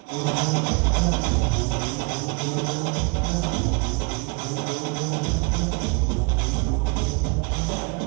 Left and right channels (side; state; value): left; quieter; 30.8 dB